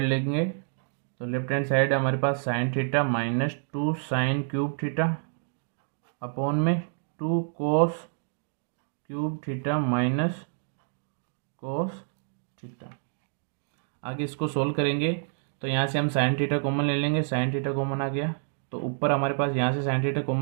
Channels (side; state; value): left; silent; digital silence